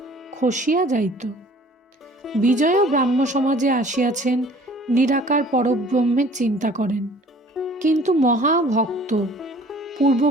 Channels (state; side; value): normal; both; correlation 0.51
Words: খসিয়া যাইত। বিজয়ও ব্রাহ্ম সমাজে আসিয়াছেন, নিরাকার পরব্রহ্মের চিন্তা করেন, কিন্তু মহাভক্ত।